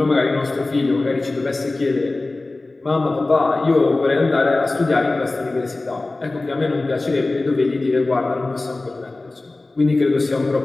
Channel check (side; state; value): right; quieter; 3.2 dB